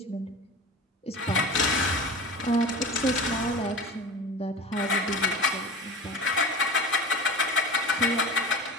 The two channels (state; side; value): normal; both; correlation 0.32